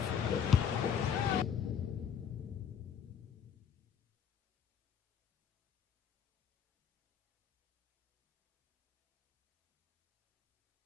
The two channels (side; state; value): right; quieter; 7.8 dB